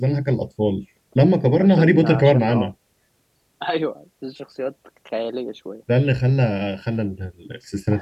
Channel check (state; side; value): identical; both; correlation 1.00